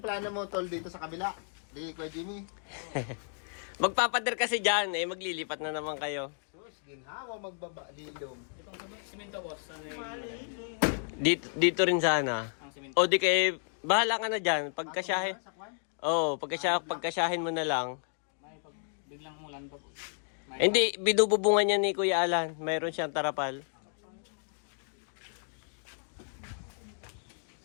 mo tol dito sa kabila? Di Kuya Jimmy? Magpapader kasi dyan eh, maglilipat na naman kayo. Sus, ginhawa magbaba lilom. Dito rin sana. O di kay, bahala ka na dyan. Pagkasyahin. Oh, pagkasyahin mo na lang. Biglang mulan pag Hindi, binububungan niya ni Kuya Alan. Mayroon siyang tarapal.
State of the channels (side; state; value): right; silent; 56 dB below the other